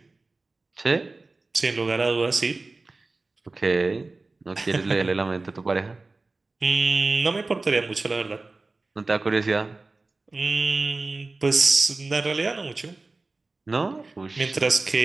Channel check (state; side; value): quieter; left; 3.4 dB